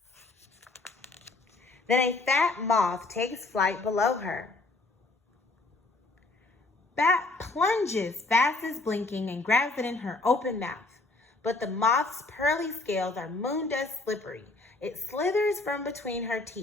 Then a fat moth takes flight below her. Bat plunges fast as blinking and grabs it in her open mouth. But the moth's pearly scales are moon dust slippery. It slithers from between her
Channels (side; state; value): right; quieter; 3.3 dB